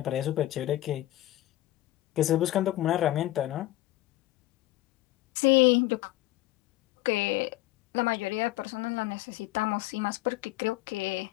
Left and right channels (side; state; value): right; quieter; 16.0 dB